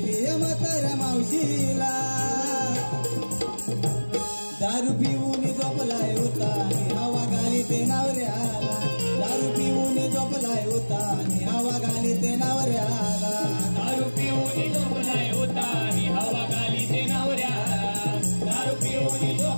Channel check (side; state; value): both; inverted; correlation -1.00